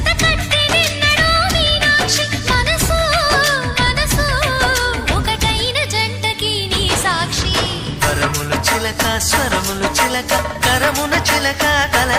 చిలక స్వరములు చిలక కరమున చిలక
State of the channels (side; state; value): both; identical; correlation 1.00